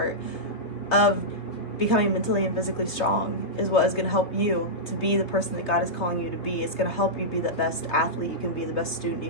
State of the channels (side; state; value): right; late; 3.3 ms